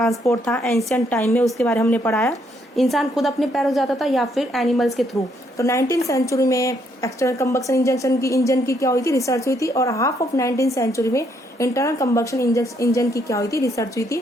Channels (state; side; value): normal; both; correlation 0.72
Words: था एंशिएंट टाइम में, उसके बारे में हमने पढ़ाया। इंसान खुद अपने पैरों जाता था या फिर एनिमल्स के थ्रू। तो 19th सेंचुरी में एक्सटर्नल कंबक्शन इंजन की क्या हुई थी, रिसर्च हुई थी। और हाफ ऑफ 19th सेंचुरी में इंटरनल कंबक्शन इंजन की क्या हुई थी, रिसर्च हुई